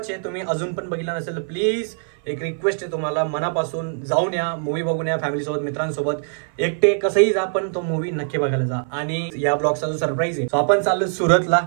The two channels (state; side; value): silent; left; 57 dB below the other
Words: आहे. तुम्ही अजून पण बघितला नसेल प्लीज एक रिक्वेस्ट आहे तुम्हाला मनापासून, जाऊन या, मूवी बघून या फॅमिलीसोबत, मित्रांसोबत, एकटे कसंही जा, पण तो मूवी नक्की बघायला जा. आणि या ब्लॉगचा जो सरप्राईज आहे, आपण चाललो सुरतला